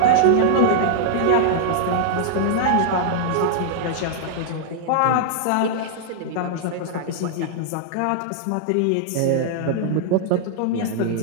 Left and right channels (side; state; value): both; different; correlation -0.01